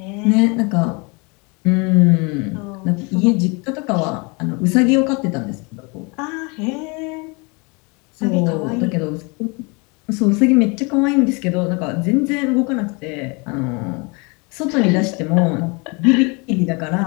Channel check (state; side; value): quieter; right; 30.1 dB